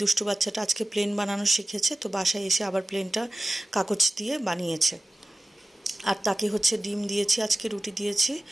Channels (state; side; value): normal; both; correlation 0.95